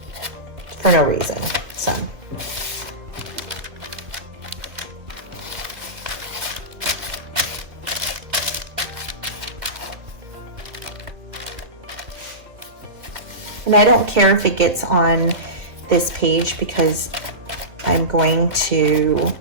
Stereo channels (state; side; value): late; left; 2.5 ms